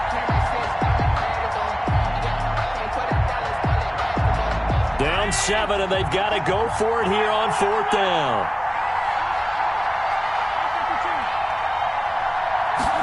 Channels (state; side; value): identical; both; correlation 1.00